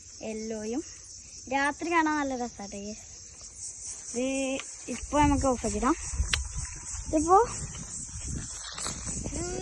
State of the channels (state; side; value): identical; both; correlation 1.00